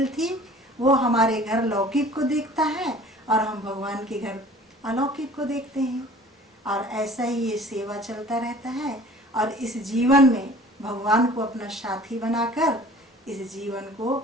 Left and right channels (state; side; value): normal; both; correlation 0.47